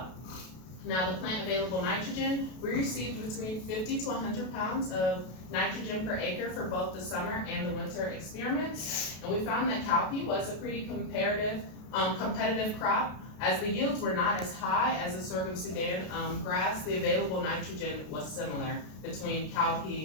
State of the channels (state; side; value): late; right; 32 ms